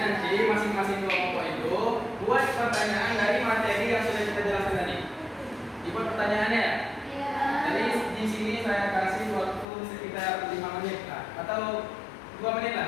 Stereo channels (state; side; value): drops out; right; at 9.7 s